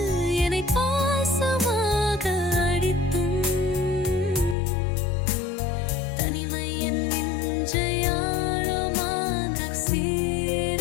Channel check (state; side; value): drops out; right; at 4.5 s